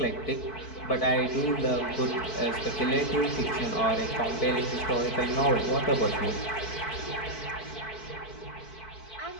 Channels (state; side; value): late; right; 4.5 ms